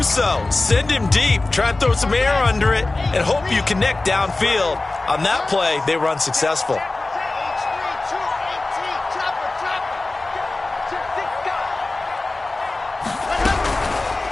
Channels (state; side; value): quieter; right; 3.2 dB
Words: so. Send him deep, try and throw some air under it, and hope you connect downfield. On that play, they were unsuccessful.